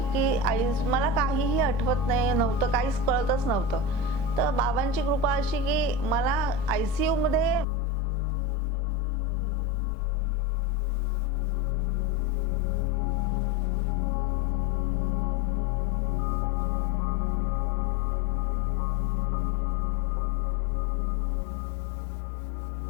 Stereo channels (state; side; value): drops out; right; at 7.7 s